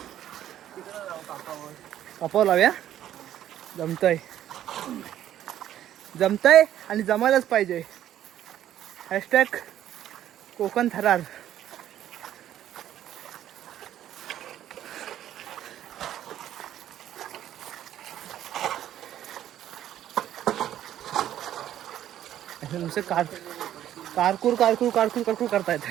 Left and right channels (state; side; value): quieter; left; 11.6 dB